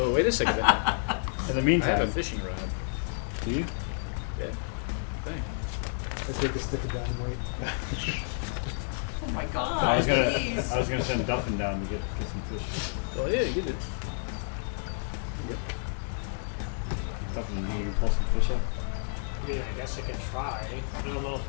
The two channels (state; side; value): silent; right; 58 dB below the other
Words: wait a second. in the I have a meantime, fishing rod. do you? Yeah. Thanks. I take a stick of dynamite. Oh my god! I was please. gonna send Duffin down to get some fish. Well, yeah, you did. Duffin, you pull some fish up. I mean, I guess I could try. I don't know if